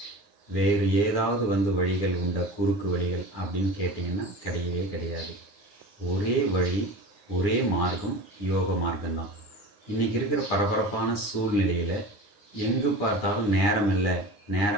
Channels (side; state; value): right; late; 9.7 ms